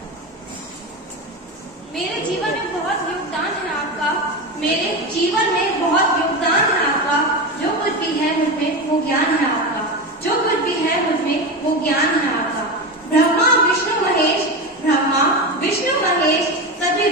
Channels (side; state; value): both; normal; correlation 0.20